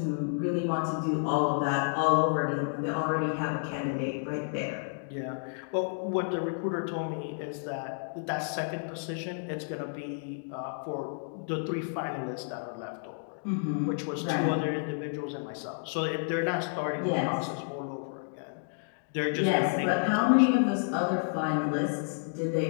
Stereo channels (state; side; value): silent; right; digital silence